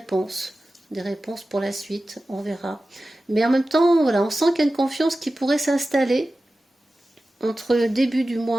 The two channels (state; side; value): normal; both; correlation 0.95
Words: pour la suite, on verra. Mais en même temps, voilà, on sent qu'il y a une confiance qui pourrait s'installer entre le début du